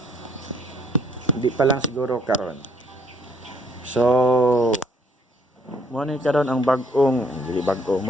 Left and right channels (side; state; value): both; normal; correlation 0.65